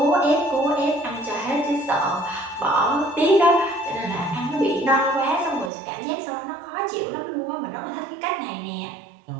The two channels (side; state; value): left; drops out; at 5.7 s